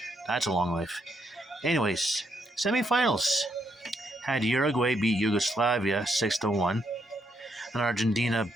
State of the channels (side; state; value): both; normal; correlation 0.76